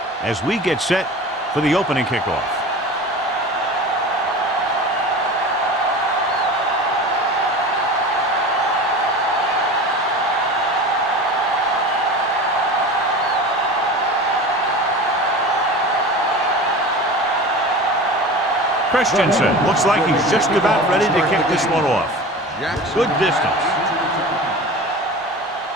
as we get set for the opening kickoff. Christensen looks like he's just about ready to kick this one off. Good distance.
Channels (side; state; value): both; normal; correlation 0.34